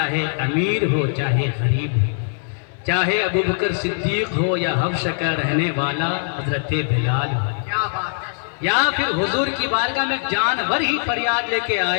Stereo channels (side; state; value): right; silent; digital silence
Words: امیر ہو چاہے غریب ہو، چاہے ابوبکر صدیق ہو یا حبشہ کا رہنے والا حضرت بلال ہو، کیا بات ہے. یا پھر حضور کی بارگاہ میں جانور ہی فریاد لے کے